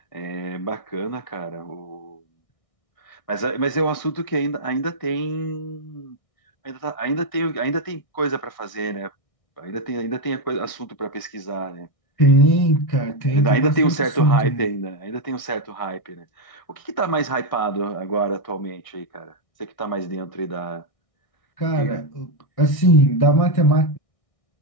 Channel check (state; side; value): late; right; 1.6 ms